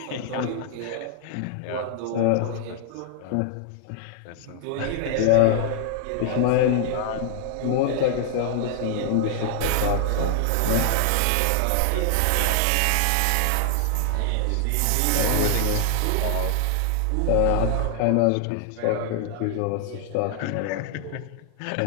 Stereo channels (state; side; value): different; both; correlation 0.00